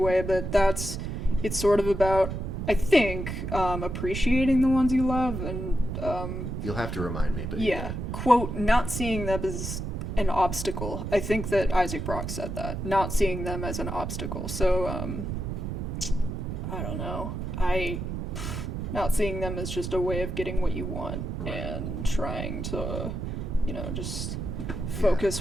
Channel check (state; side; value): noise; right; rumble, 4 dB below the sound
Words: but it's sort of about, I think, appreciating the ones you love, and you'll have to remind me, but quote, not seeing them as an obstacle. I think that Isaac Brock said that, not seeing them as an obstacle. So I don't know, not seeing them as just a way of getting what you want, and trying to, you know, just focus